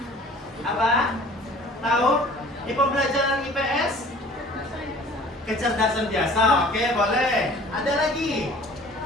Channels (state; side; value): normal; both; correlation 0.48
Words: Apa? Tahu? Di pembelajaran IPS? Kecerdasan biasa, oke, boleh. Ada lagi?